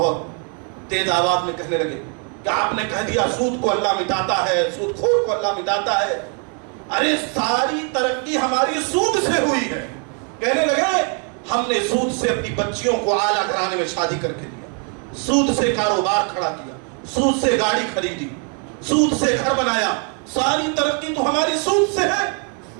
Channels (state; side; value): quieter; left; 39.6 dB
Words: تیز آواز میں کہنے لگے کہ آپ نے کہہ دیا سود کو اللہ مٹاتا ہے، سود خور کو اللہ مٹاتا ہے. ارے ساری ترقی ہماری سود سے ہوئی ہے. کہنے لگے ہم نے سود سے اپنی بچیوں کو اعلیٰ گھرانے میں شادی کر کے دیا، سود سے کاروبار کھڑا کیا، سود سے گاڑی خریدی، سود سے گھر بنایا، ساری ترقی تو ہماری سود سے ہے،